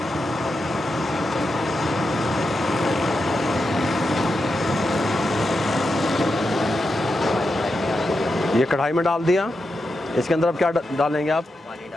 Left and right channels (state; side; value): normal; both; correlation 0.87